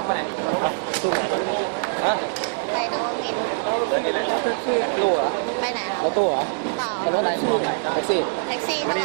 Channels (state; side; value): silent; left; 60 dB below the other